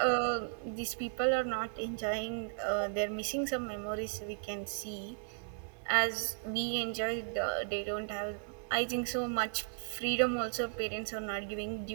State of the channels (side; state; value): left; silent; 54 dB below the other